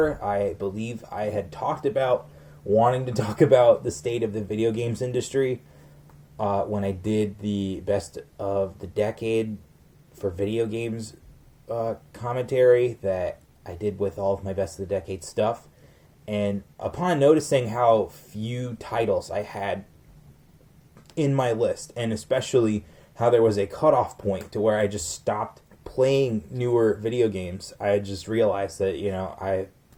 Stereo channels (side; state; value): both; identical; correlation 1.00